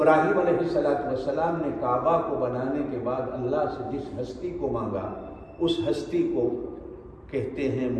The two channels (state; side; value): identical; both; correlation 1.00